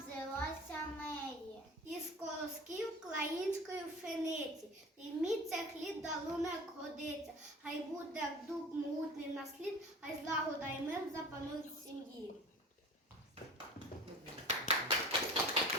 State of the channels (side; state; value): both; normal; correlation 0.39